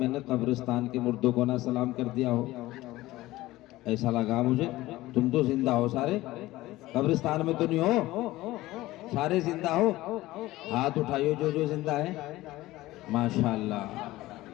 نے قبرستان کے مردوں کو نہ سلام کر دیا ہو، ایسا لگا مجھے۔ تم تو زندہ ہو سارے، قبرستان میں تو نہیں ہو، سارے زندہ ہو؟ ہاتھ اٹھائیو جو جو زندہ ہے، ماشاءاللہ۔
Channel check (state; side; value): quieter; right; 17.5 dB